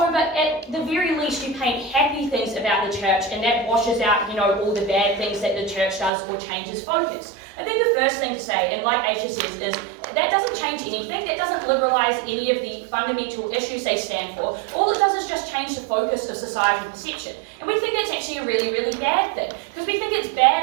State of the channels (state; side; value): drops out; left; at 6.1 s